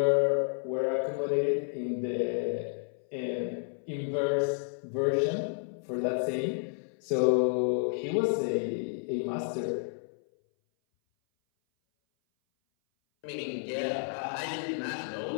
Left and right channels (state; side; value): silent; right; 57 dB below the other